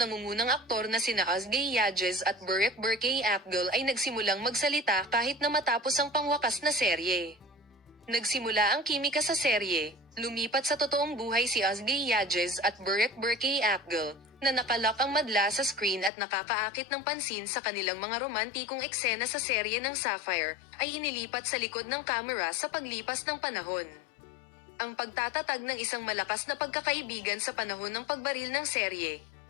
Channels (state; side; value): drops out; right; at 16.1 s